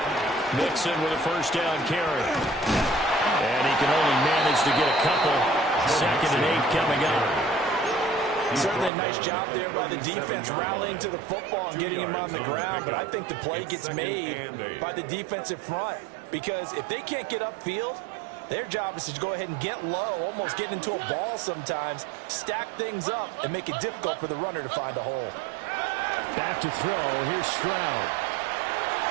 Mixon with a first down carry. And he can only manage to get a couple. 2nd and 8 coming up. Certainly a nice job there by the defense rallying to the football and getting him on the ground, but I think the play gets made by the defensive front because if they can't get upfield, their job is to go ahead and get low, almost get into a ball sometimes, stack things up, and make it difficult for the runner to find a hole. Back to throw. Here's Stroud.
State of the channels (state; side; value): drops out; left; at 8.9 s